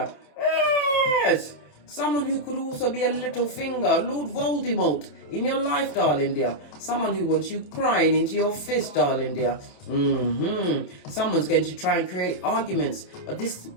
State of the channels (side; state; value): right; late; 27 ms